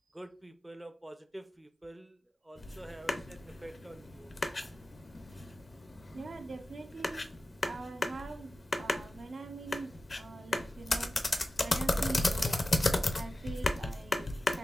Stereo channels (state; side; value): normal; both; correlation 0.95